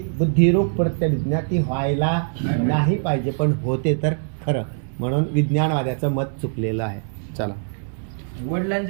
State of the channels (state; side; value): silent; left; digital silence